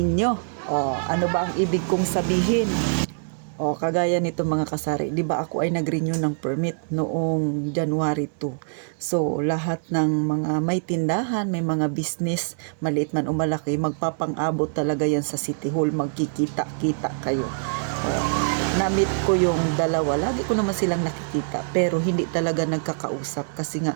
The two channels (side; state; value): left; silent; digital silence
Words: O, ano ba ang ibig kong sabihin? O, kagaya nito mga kasari, di ba ako ay nag-renew ng permit noong January 2. So, lahat ng mga may tindahan, may mga business, maliit man o malaki, magpapang-abot talaga yan sa City Hall, magkikita-kita kayo. O, na-meet ko yung dalawa, lagi ko naman silang nakikita, pero hindi talaga nagkakausap kasi